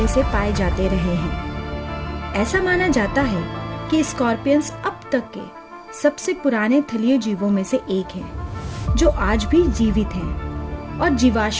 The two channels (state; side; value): identical; both; correlation 1.00